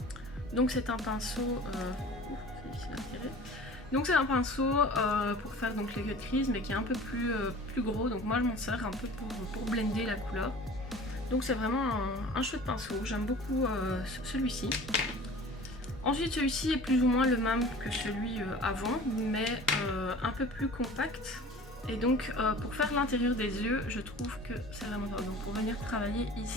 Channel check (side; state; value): both; normal; correlation 0.42